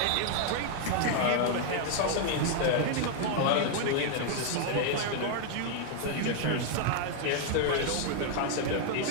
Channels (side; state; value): both; different; correlation 0.00